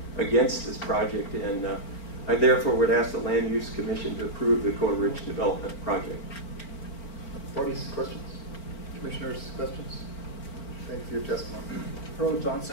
against this project. And I therefore would ask the Land Use Commission to approve the Coa Ridge Development Project. Parties, questions? Commissioners, questions? Thank you for your testimony. Pearl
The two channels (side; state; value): right; late; 4.4 ms